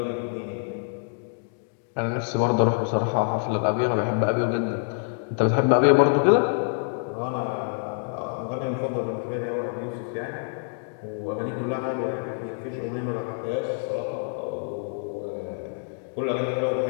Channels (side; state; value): right; silent; digital silence